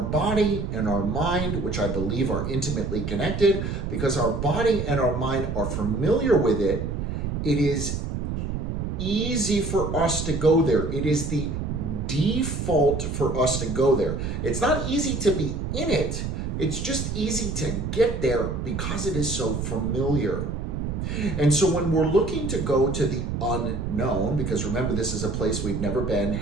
and our mind, which I believe are intimately connected, because our body and our mind are familiar with it, it is easy for us to go there. It is the default for us to go there. It's not easy to be in it. It's just easy to get there because it is so familiar. And so when we're looking to go to the unknown, because remember, this is a place we've never been:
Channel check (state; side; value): noise; right; rumble, 3 dB below the sound